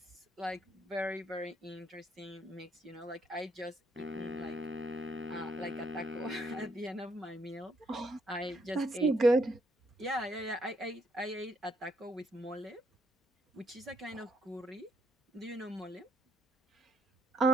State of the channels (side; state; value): both; normal; correlation 0.72